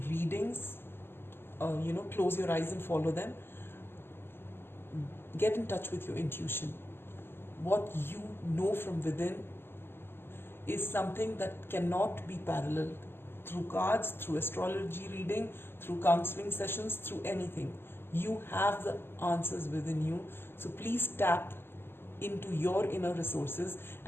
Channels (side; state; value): right; late; 0.11 ms